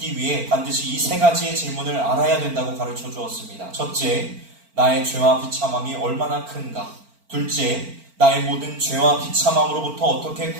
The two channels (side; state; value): left; late; 4.4 ms